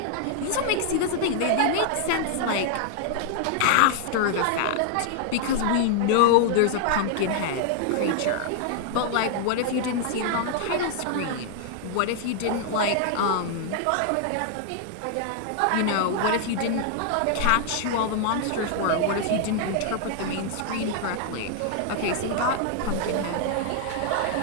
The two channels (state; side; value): different; both; correlation 0.00